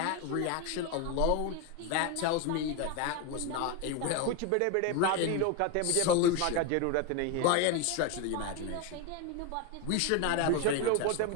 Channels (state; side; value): different; both; correlation 0.02